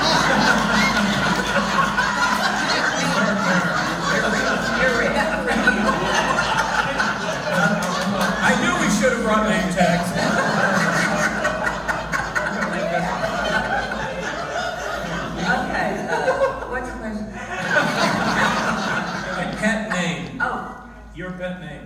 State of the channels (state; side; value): identical; both; correlation 1.00